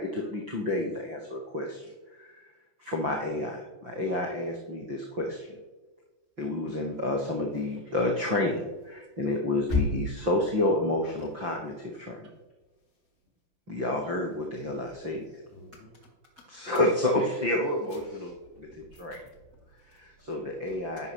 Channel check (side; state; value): left; late; 5.8 ms